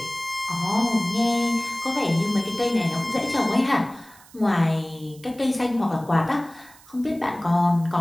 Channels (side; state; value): right; noise; hiss, 24 dB below the sound